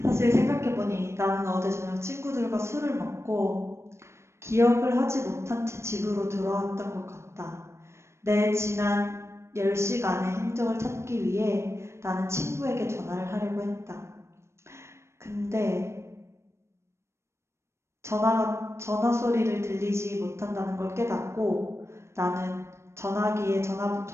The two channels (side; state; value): left; late; 0.13 ms